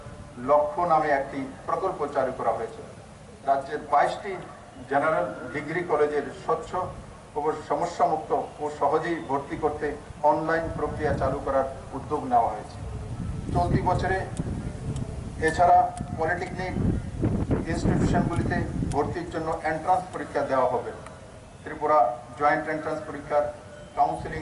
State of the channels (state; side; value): identical; both; correlation 1.00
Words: লক্ষ্য নামে একটি প্রকল্প চালু করা হয়েছে। রাজ্যের 22টি জেনারেল ডিগ্রি কলেজের স্বচ্ছ ও সমস্যামুক্ত ও সহজেই ভর্তি করতে অনলাইন প্রক্রিয়া চালু করার উদ্যোগ নেওয়া হয়েছে। চলতি বছরে এছাড়া পলিটেকনিক ইনস্টিটিউশনগুলিতে ভর্তির জন্য এন্ট্রান্স পরীক্ষা দেওয়া হবে। ত্রিপুরা জয়েন্ট এন্ট্রান্স পরীক্ষার